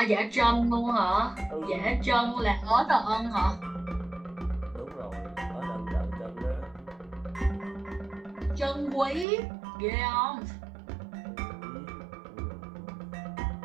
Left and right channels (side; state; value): left; drops out; at 9.2 s